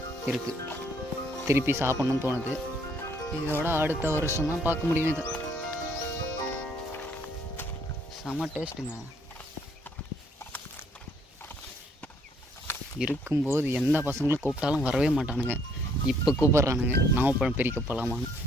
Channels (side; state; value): both; normal; correlation 0.65